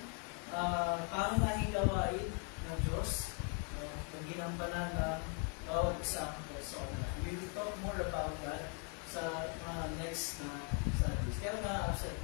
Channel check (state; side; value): quieter; right; 36.8 dB